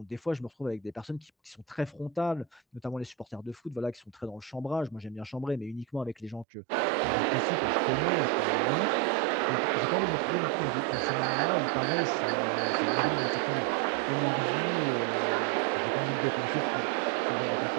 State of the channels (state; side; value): drops out; left; at 6.5 s